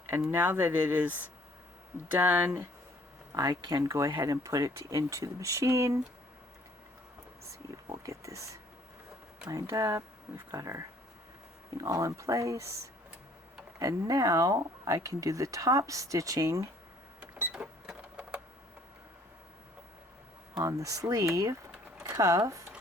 And now that it is done, I can go ahead and put it into the machine. Let's see, we'll get this lined up. We've got our thing all in place. And now I can do the top stitching on the sleeve cuff.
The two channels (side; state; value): both; normal; correlation 0.59